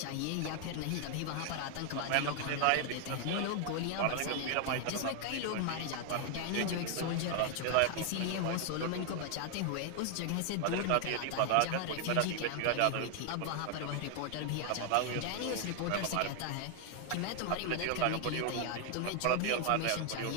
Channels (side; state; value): both; different; correlation 0.00